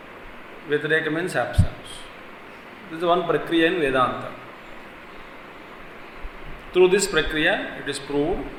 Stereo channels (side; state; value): both; identical; correlation 1.00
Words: Vyatireka means absence. This is one Prakriya in Vedanta. Through this Prakriya, it is proved